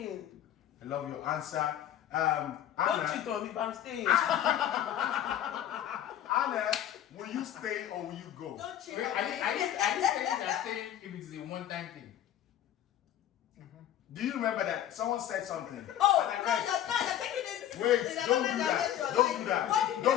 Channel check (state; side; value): quieter; right; 11.2 dB